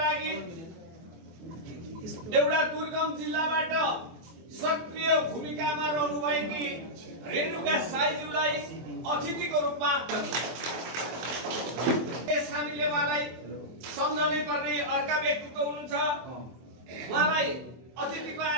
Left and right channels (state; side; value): late; left; 24 ms